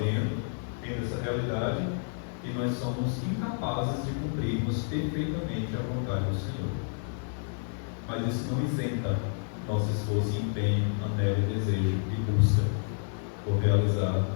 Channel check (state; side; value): silent; right; digital silence